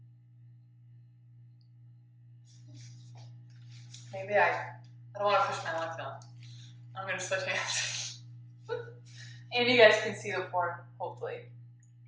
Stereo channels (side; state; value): both; identical; correlation 1.00